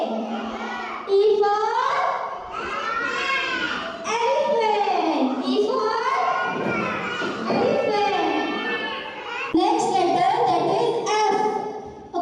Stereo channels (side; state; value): both; identical; correlation 1.00